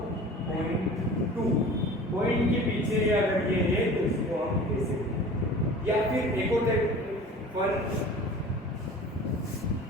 पॉइंट के पीछे अगर ये है तो इसको हम कैसे, या फिर एक और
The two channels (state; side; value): normal; both; correlation 0.41